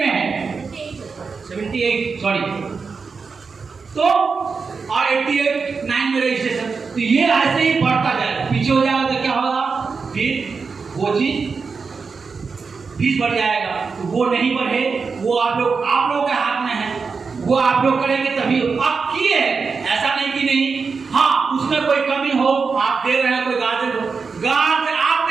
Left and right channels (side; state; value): left; quieter; 5.0 dB